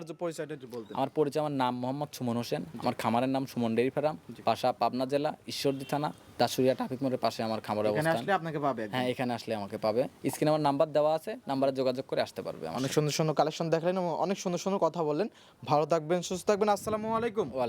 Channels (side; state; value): both; identical; correlation 1.00